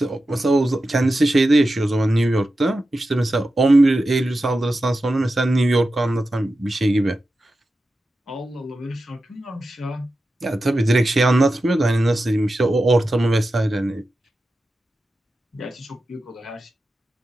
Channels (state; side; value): normal; both; correlation 0.92